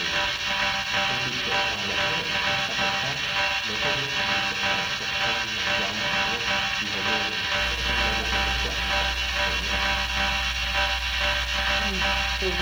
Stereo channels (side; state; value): left; noise; hiss, 23 dB below the sound